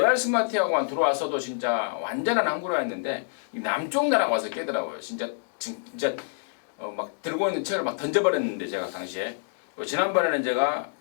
스마트하고만 들어왔어도 진짜 완전한 항구라였는데 남쪽 나라가 와서 깨더라고요. 진짜 막 들고 있는 책을 막 던져버렸는데 제가 당시에 지난번에는 제가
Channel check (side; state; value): right; silent; digital silence